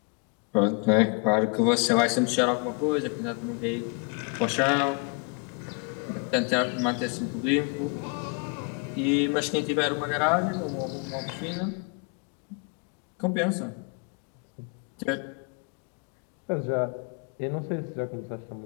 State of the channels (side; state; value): right; quieter; 34.1 dB